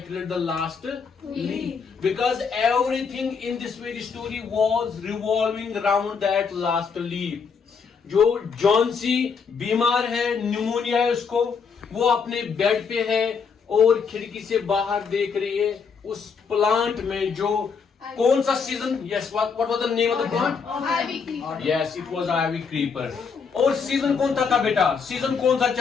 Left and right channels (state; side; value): quieter; right; 5.8 dB